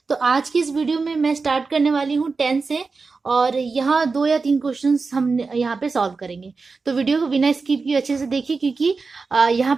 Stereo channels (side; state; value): left; quieter; 4.4 dB